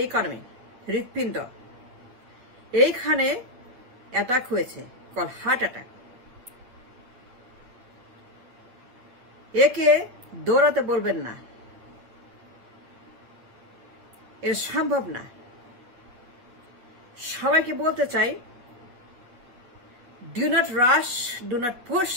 ইকোনমি, হৃৎপিণ্ড। এইখানে অ্যাটাক হয়েছে, কল হার্ট অ্যাটাক। একে দৌড়াতে বলবেন না, এর সম্ভব না। সবাইকে বলতে চাই, do not rush, do not push,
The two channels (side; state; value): left; late; 8.8 ms